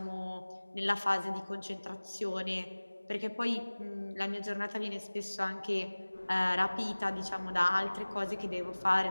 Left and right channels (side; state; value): both; inverted; correlation -1.00